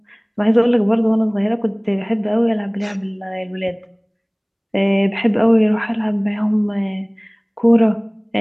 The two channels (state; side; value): identical; both; correlation 1.00